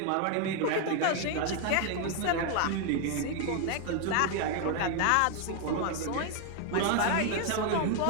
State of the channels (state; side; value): different; both; correlation 0.01